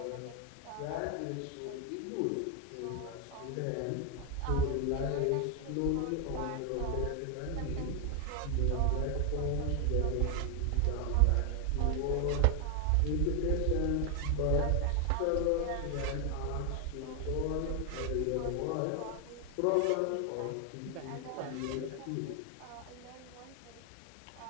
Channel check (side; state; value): both; different; correlation 0.01